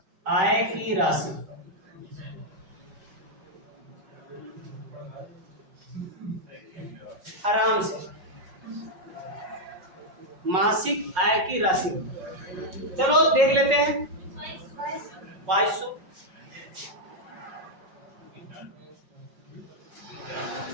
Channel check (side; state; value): left; late; 5.4 ms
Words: आय की राशि। आराम से, मासिक आय की राशि। चलो देख लेते हैं। 2200।